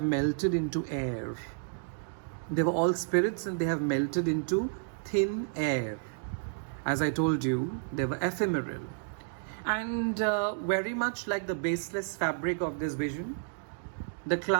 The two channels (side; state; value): left; silent; digital silence